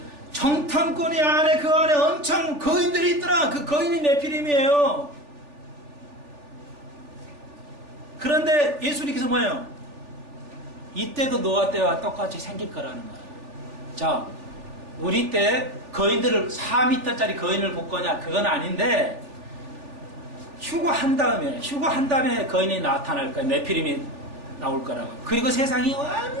정탐꾼이 그 안에 엄청 거인들이 있더라. 그 거인이 네피림이에요. 그런데 예수님께서 뭐예요? 이때도 노아 때와 똑같이 생길 거라는 거예요. 자, 우리 때 거인들을 4m짜리 거인을 볼 거냐? 그건 아닌데 휴거한 다음에 거인이 나타날 거예요. 네피림이 나올 거라고. 그리고 세상이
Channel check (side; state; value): left; late; 3.4 ms